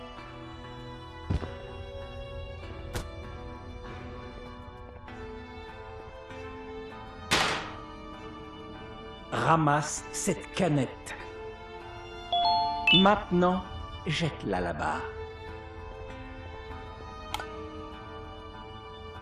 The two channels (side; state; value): both; identical; correlation 1.00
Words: Ramasse cette canette. Maintenant, jette-la là-bas.